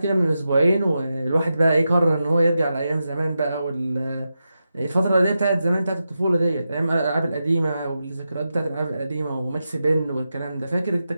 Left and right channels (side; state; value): both; inverted; correlation -0.89